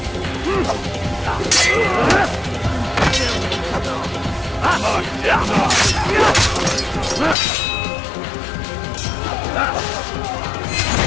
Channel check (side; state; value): right; drops out; at 7.4 s